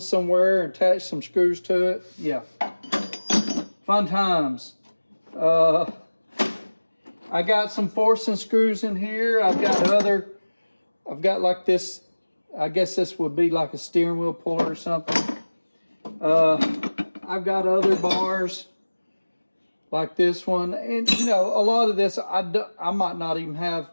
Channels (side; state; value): both; inverted; correlation -1.00